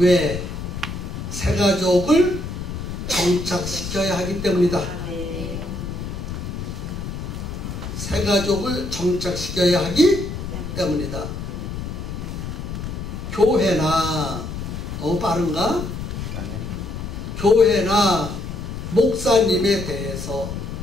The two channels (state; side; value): noise; left; rumble, 6 dB below the sound